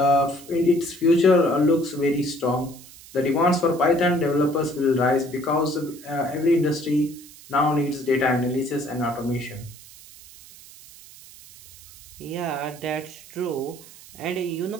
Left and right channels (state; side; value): noise; right; hiss, 20 dB below the sound